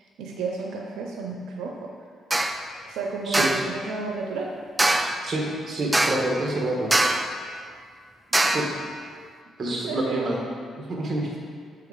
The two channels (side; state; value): both; normal; correlation 0.85